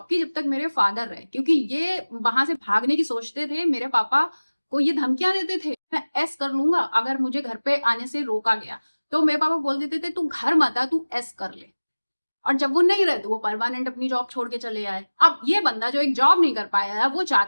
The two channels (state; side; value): inverted; both; correlation -1.00